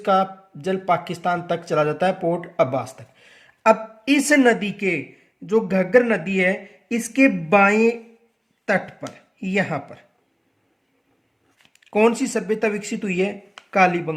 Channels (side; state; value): both; identical; correlation 1.00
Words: जल पाकिस्तान तक चला जाता है, पोर्ट अब्बास तक। अब इस नदी के जो घग्गर नदी है, इसके बाएं तट पर यहां पर कौन सी सभ्यता विकसित हुई है?